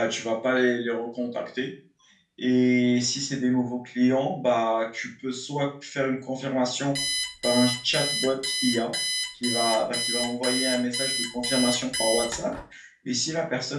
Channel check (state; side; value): identical; both; correlation 1.00